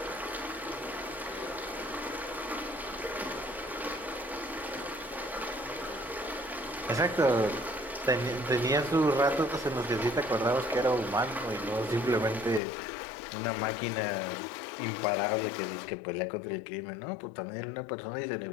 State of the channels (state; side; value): drops out; right; at 12.6 s